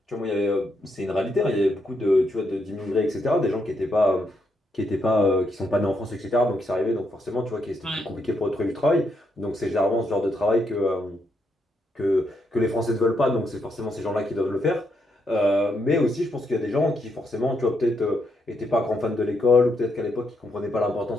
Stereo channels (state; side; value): normal; both; correlation 0.78